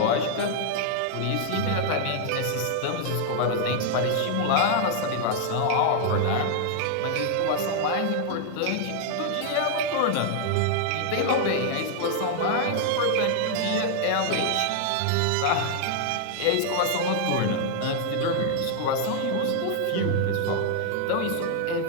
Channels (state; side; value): different; both; correlation 0.00